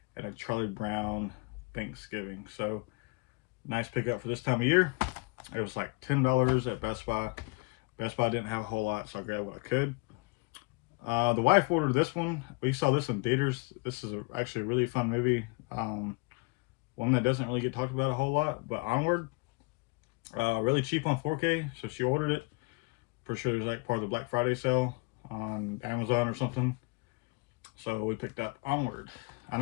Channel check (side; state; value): right; quieter; 27.6 dB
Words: and a Charlie Brown Thanksgiving. So, nice pickup for this time of year. It was like $10 at Best Buy. Best Buy didn't have a whole lot, so I grabbed what I could. The wife ordered this one. We saw this in theaters. This is actually a really fun movie. One that doesn't really get talked about a whole lot, but Onward. Really cheap on 4K, so she ordered it. Pretty sure it was like part of the Black Friday sale on Amazon or something. So we picked up Onward. I